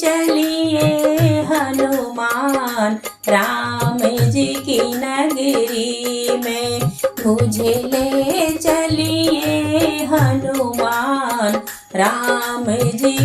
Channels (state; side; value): identical; both; correlation 1.00